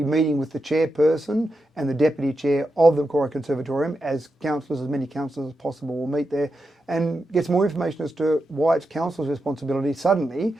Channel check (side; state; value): both; normal; correlation 0.88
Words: meeting with the chairperson and the deputy chair of the Macquarie Conservatorium as councillors, as many councillors as possible will meet there and get some more information as to why it's council's responsibility suddenly